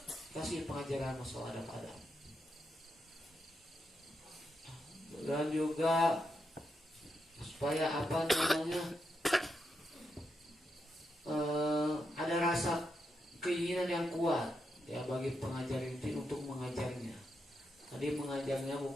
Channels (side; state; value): both; normal; correlation 0.84